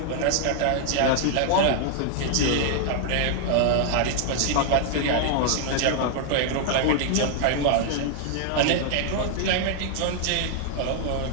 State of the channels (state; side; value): different; both; correlation 0.00